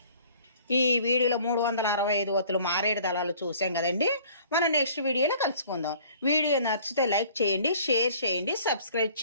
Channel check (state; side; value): inverted; both; correlation -0.53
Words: ఈ వీడియోలో 365 ఒత్తులు మారేడు దళాలు చూసాం కదండి. మనం నెక్స్ట్ వీడియోలో కలుసుకుందాం. వీడియో నచ్చితే లైక్ చేయండి, షేర్ చేయండి, సబ్స్క్రైబ్